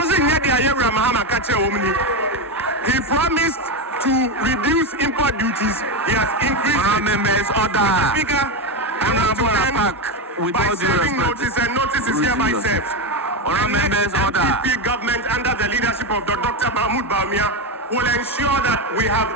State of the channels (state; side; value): normal; both; correlation 0.12